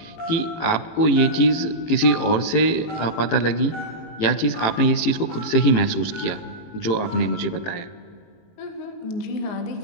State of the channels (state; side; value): late; right; 18 ms